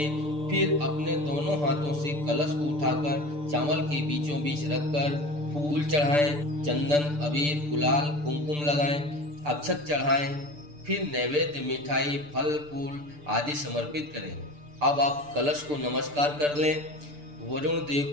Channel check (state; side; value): late; left; 6.8 ms